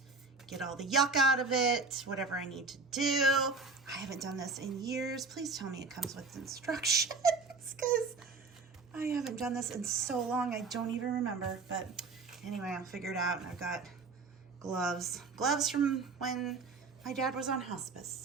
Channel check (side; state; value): left; quieter; 4.2 dB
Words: Get all the yuck out of it, whatever I need to do. I haven't done this in years. Please tell me it comes with instructions because I haven't done this in so long I don't even remember. But anyway, I'll figure it out. And I've got gloves from when my dad was on